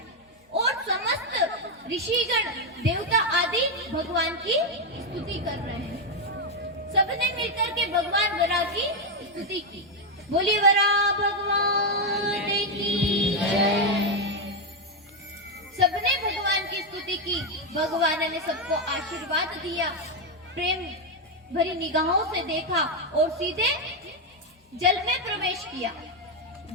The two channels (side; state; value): both; normal; correlation 0.04